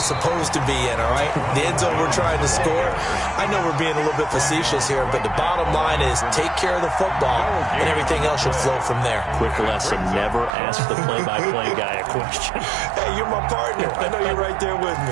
supposed to be in, all right? The end zone we're trying to score. I know we're being a little bit facetious here, but the bottom line is take care of the football, and everything else should flow from there. Quick lesson, never ask the play-by-play guy a question. Hey, you're my partner. I know you're right there with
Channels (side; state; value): left; drops out; at 10.5 s